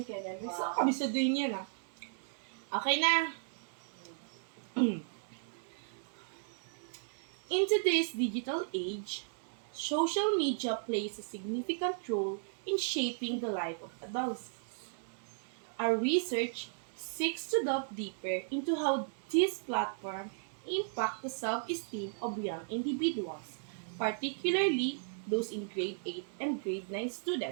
Kenya. May sa kami sa din yan ah. Okay na. In today's digital age, social media plays a significant role in shaping the life of adolescents. Our research seeks to delve deeper into how these platforms impact the self-esteem of young individuals, particularly those in grade 8 and grade 9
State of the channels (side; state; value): left; silent; digital silence